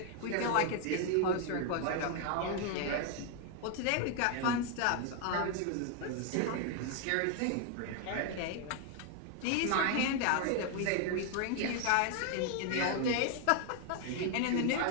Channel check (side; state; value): both; different; correlation 0.00